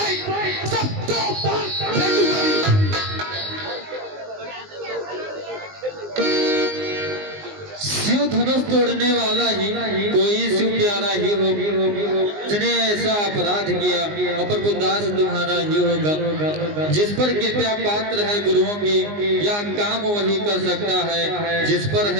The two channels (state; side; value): late; left; 19 ms